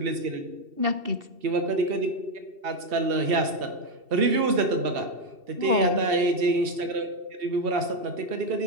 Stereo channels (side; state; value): left; late; 2.7 ms